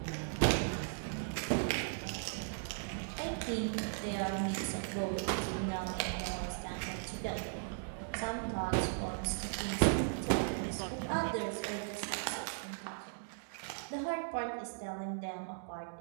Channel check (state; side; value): silent; left; digital silence